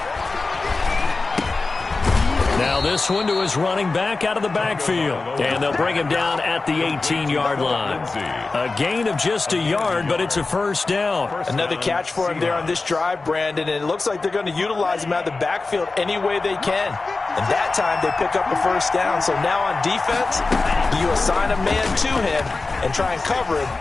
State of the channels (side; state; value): right; quieter; 3.7 dB